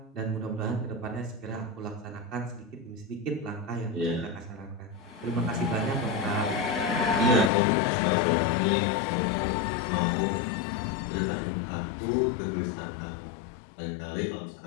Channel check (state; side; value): drops out; right; at 7.5 s